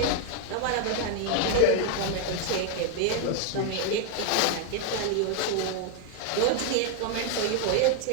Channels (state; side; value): different; both; correlation 0.00